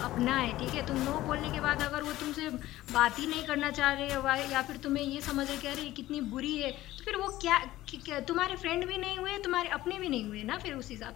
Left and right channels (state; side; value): quieter; right; 15.8 dB